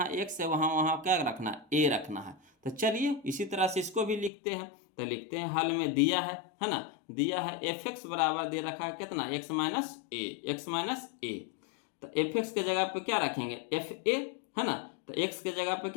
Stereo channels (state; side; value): drops out; right; at 4.3 s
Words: x है वहाँ वहाँ क्या रखना है, ए रखना है। तो चलिए, इसी तरह से इसको भी लिखते हैं। तो लिखते हैं, हल में दिया है ना, दिया है एफ एक्स बराबर दे रखा है कितना, x माइनस ए, एक्स माइनस ए। तो एफ एक्स के जगह पे क्या रखेंगे, एफ ए, है ना। तो x के जगह पे